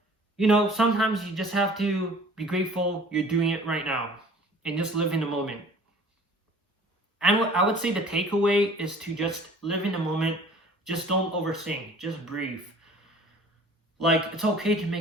you know, sometimes you just have to be grateful you're doing it right now and just live in the moment. And what I would say the takeaway is to just live in the moment. Just don't overthink. Just breathe. Like, it's okay to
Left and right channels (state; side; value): normal; both; correlation 0.49